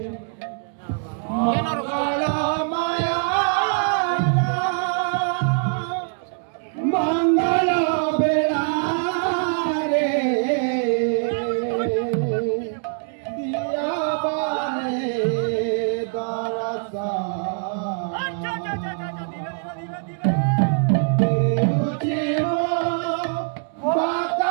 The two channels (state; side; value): silent; left; 63 dB below the other